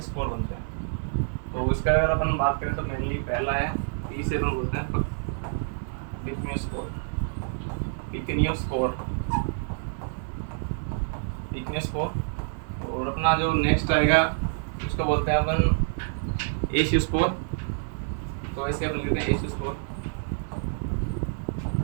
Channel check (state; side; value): silent; left; 60 dB below the other